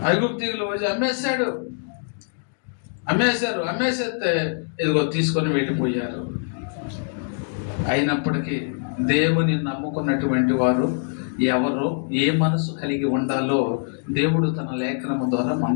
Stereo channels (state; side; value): silent; right; 63 dB below the other